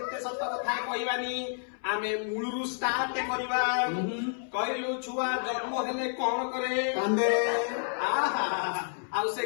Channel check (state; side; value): silent; right; 58 dB below the other